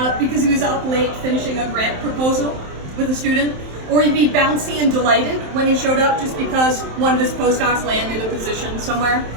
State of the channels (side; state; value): left; late; 27 ms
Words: because he was up late finishing a grant proposal with a student, or he'd be bouncy and delighted when he showed up just because one of his postdocs landed a position somewhere.